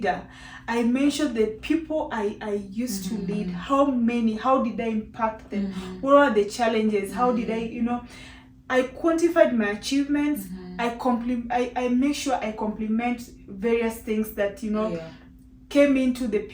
I mentioned the people I used to lead. How did I impact them? What are the challenges? How did I quantified my achievements. I make sure I compliment various things that came into the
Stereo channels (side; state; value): both; identical; correlation 1.00